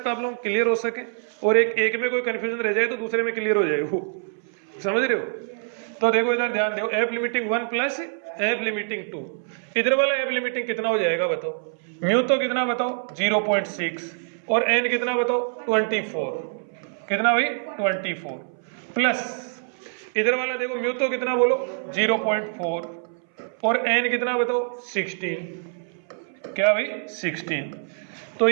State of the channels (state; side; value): silent; left; 62 dB below the other